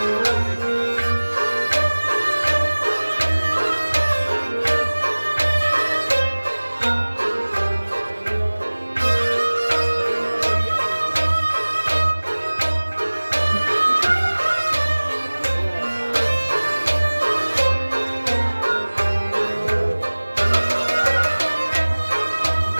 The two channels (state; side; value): inverted; both; correlation -1.00